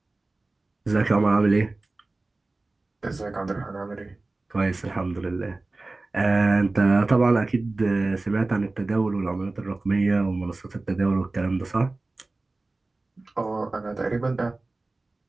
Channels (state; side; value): quieter; left; 3.2 dB